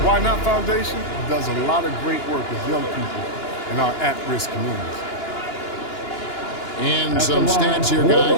Why Not Foundation, does a lot of great work with young people in our at-risk communities. And some stats here,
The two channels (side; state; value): right; late; 2.9 ms